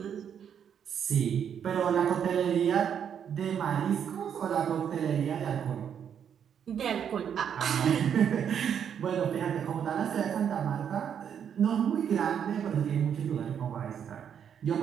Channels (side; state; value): left; quieter; 8.3 dB